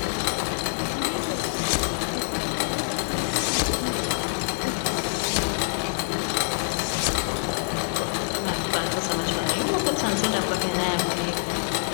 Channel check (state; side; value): silent; right; digital silence